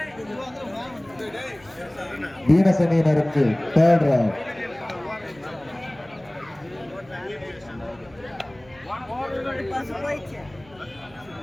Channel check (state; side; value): noise; right; hum, 25 dB below the sound